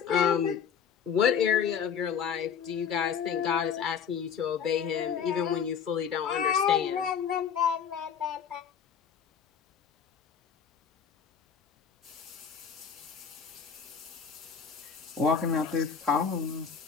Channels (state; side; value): quieter; right; 7.2 dB